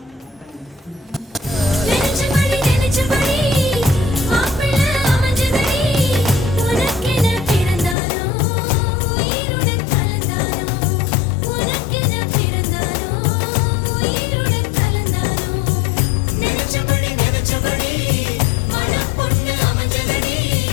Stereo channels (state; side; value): drops out; right; at 8.0 s